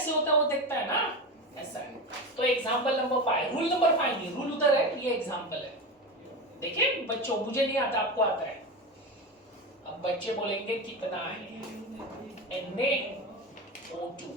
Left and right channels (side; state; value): both; normal; correlation 0.22